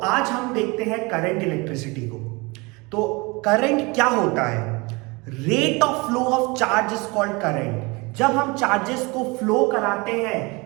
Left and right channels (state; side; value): quieter; left; 26.3 dB